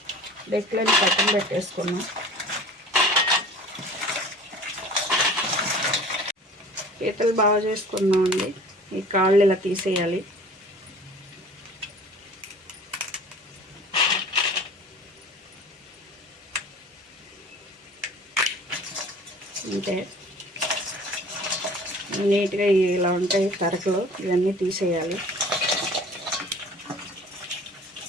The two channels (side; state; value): both; normal; correlation 0.45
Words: డెక్కులని పక్కన పెట్టేసుకున్నాం. పీతలు బాగా చేసుకున్నాం అండి. ఈ కాళ్ళు ఇలా తీసేయాలి. అంటే నీట్గా ఇలా ఉంటాయి తరకలు, ఇవన్నీ తీసేయాలి.